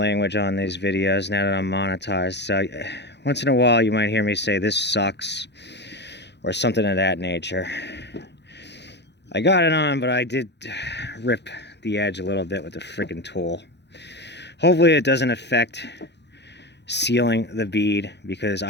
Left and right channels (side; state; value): right; late; 0.50 ms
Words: on these videos now that I'm monetized. So once in a while, you might hear me say, "This sucks," or something of that nature. I got it on, but I did rip the edge a little bit with the freaking tool. Hopefully it doesn't affect sealing the bead, because